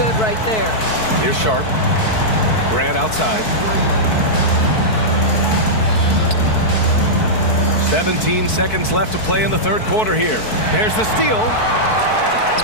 right there. Here's Sharp. Grant outside. 17 seconds left to play in the third quarter here. There's the steal.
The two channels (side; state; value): right; late; 4.6 ms